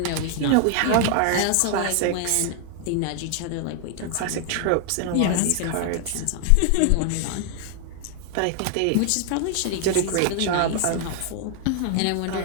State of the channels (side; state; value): both; different; correlation 0.00